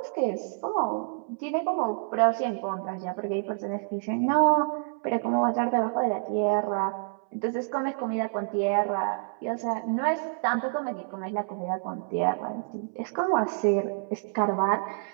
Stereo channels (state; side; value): silent; left; 59 dB below the other